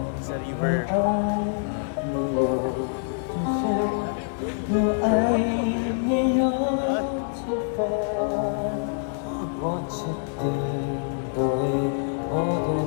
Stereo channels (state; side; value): silent; right; 61 dB below the other